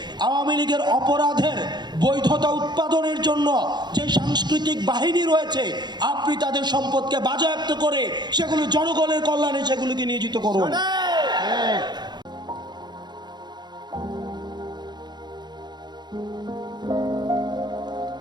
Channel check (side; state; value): left; late; 0.21 ms